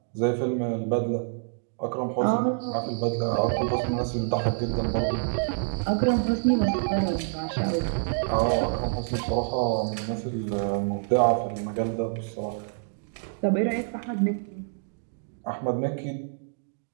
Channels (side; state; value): left; silent; digital silence